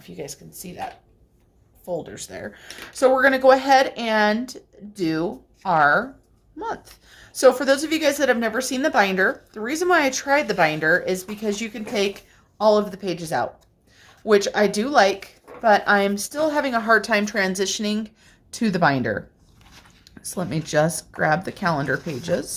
you guys can see that folders there. So we're going to go ahead and do our month. So for those of you guys that have never seen the binder, the reason why I tried the binder is because you can take all of the pages out, which I do like, but I'm still having a hard time transitioning to the binder. So let me just grab the calendar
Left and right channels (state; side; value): identical; both; correlation 1.00